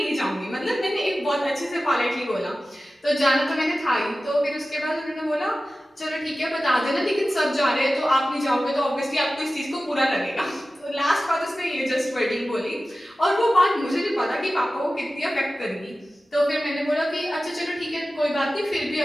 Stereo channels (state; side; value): normal; both; correlation 0.95